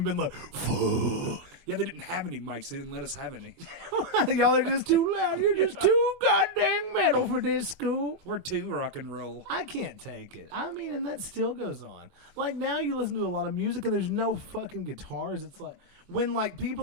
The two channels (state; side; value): late; left; 23 ms